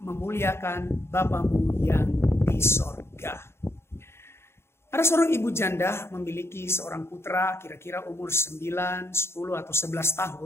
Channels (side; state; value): right; late; 0.12 ms